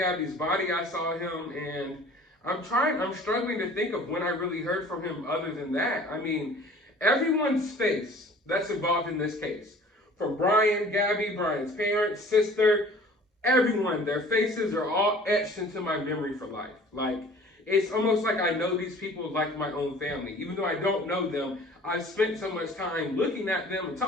body, I saw him, and I'm struggling to think of when I really heard from him other than that. I mean, everyone's face that's involved in this case, from Brian, Gabby, Brian's parents, sister, everyone, their faces are all etched into my memory for life. Like, it's almost like I know these people like my own family. Even though I don't know them, I've spent so much time looking at them and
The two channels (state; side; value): normal; both; correlation 0.48